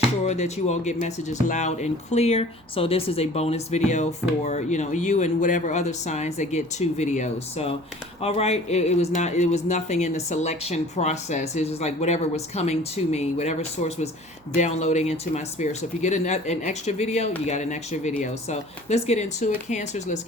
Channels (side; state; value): right; noise; hum, 30 dB below the sound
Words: sure that you all get messages loud and clear. So this is a bonus video for, you and whatever other signs that get two videos. So, all right, it was nothing in the selection process. It was just like whatever was coming to me, whatever source was downloading into my spirit. So if you get an extra video, you got an extra video. So let's get into it, Cancers. Let's